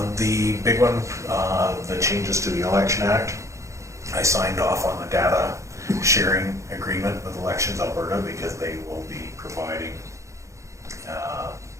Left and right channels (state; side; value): late; left; 0.15 ms